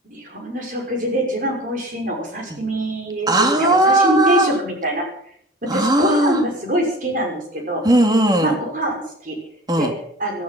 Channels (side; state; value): both; normal; correlation 0.40